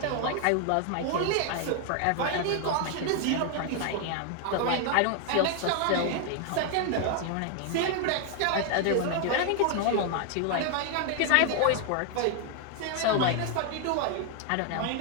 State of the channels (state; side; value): different; both; correlation 0.00